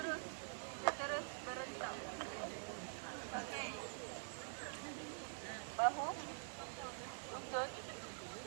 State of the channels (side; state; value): left; silent; digital silence